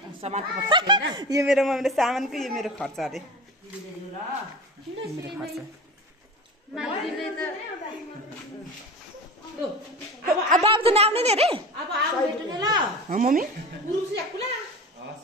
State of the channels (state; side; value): normal; both; correlation 0.32